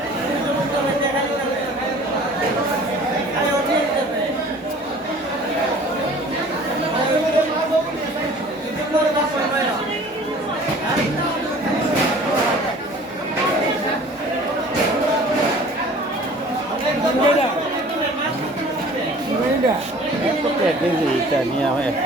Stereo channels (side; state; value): both; normal; correlation 0.48